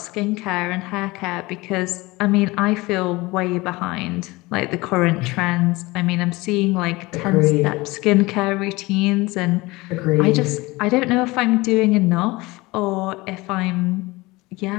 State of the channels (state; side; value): quieter; right; 21.9 dB